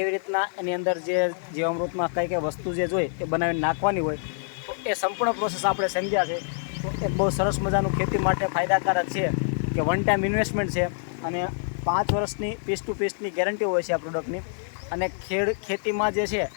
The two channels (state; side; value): silent; right; digital silence